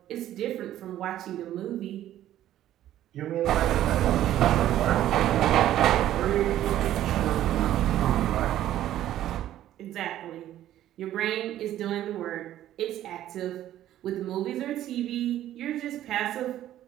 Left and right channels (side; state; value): left; quieter; 12.7 dB